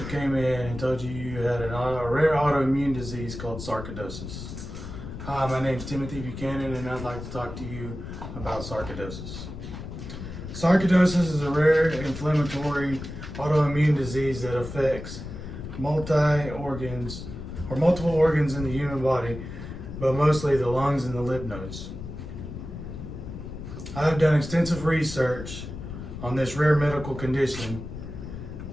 came in and told you you had a rare autoimmune disease called sarcoidosis? Hi, my name is Timothy Buchanan, and I'd like to talk to you about sarcoidosis. Sarcoidosis is a rare inflammatory autoimmune disease that affects multiple organs in the human body, but mostly the lungs and the lymph nodes. I have done extensive research on this rare medical condition,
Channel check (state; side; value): noise; left; rumble, 9 dB below the sound